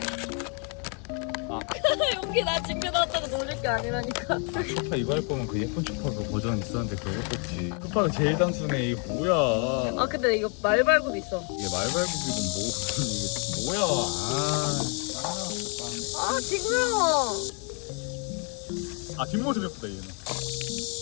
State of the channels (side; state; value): right; quieter; 38.5 dB